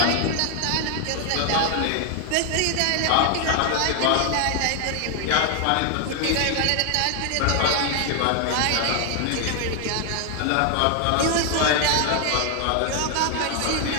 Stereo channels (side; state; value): both; different; correlation 0.00